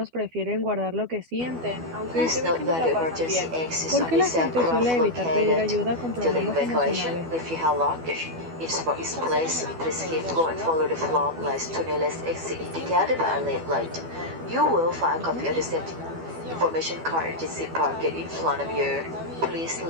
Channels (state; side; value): late; left; 12 ms